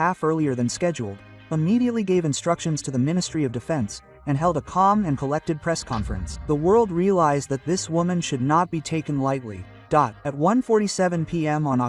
half earlier than scheduled, immediately gave instructions to the Ministry of Defense, and held a calm and collected press conference. The world realized that this woman should not be taken lightly. At 1:47 p.m. on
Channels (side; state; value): both; identical; correlation 1.00